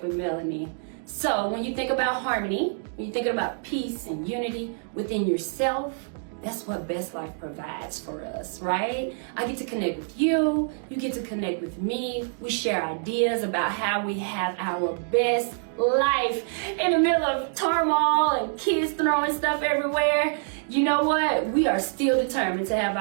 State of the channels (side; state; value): left; silent; digital silence